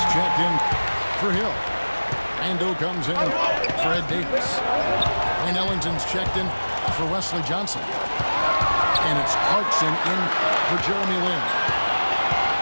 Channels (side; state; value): both; inverted; correlation -1.00